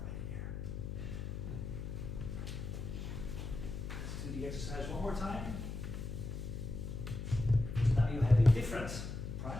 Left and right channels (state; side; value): noise; left; hum, 6 dB below the sound